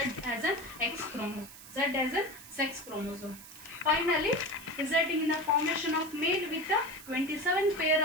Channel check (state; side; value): noise; right; hiss, 16 dB below the sound